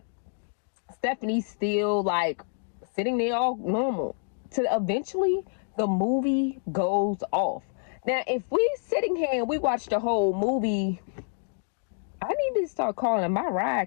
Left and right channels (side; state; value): right; silent; 57 dB below the other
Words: Stephanie's still like sitting there all normal. To eventually the movie goes off. Now, if we sitting here and we watch the whole movie, I need to start calling my